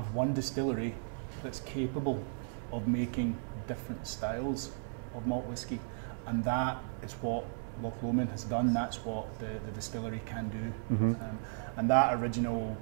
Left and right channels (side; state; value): left; silent; 54 dB below the other